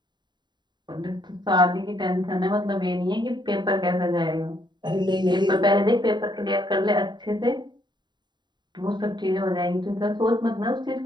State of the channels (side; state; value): left; late; 0.21 ms